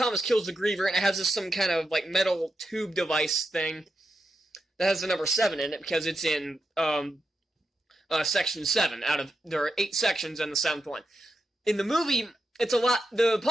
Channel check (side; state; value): both; normal; correlation 0.87